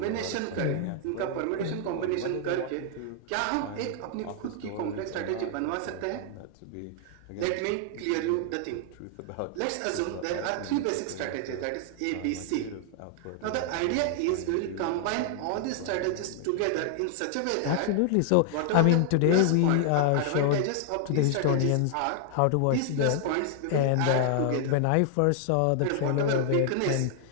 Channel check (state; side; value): different; both; correlation 0.00